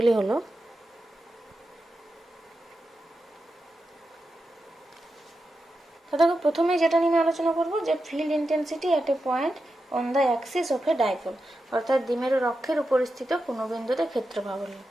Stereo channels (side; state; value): both; normal; correlation 0.89